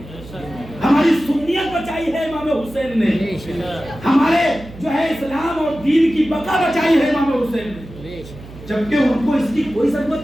ہماری سنیت بچائی ہے امام حسین نے ہمارے جو ہے اسلام اور دین کی بقا بچائی ہے امام حسین نے. جبکہ ان کو اس کی کوئی ضرورت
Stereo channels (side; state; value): right; noise; hum, 17 dB below the sound